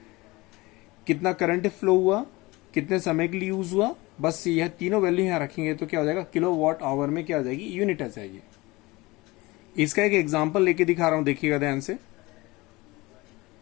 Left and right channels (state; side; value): quieter; right; 22.1 dB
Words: कितना करंट फ्लो हुआ, कितने समय के लिए यूज हुआ, बस यह तीनों वैल्यू यहां रखेंगे तो क्या हो जाएगा, किलोवाट आवर में क्या आ जाएगी, यूनिट आ जाएगी। इसका एक एग्जांपल लेके दिखा रहा हूं, देखिएगा ध्यान से।